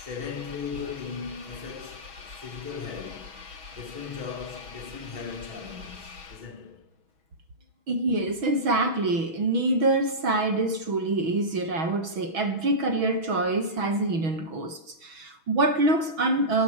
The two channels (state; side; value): late; left; 6.2 ms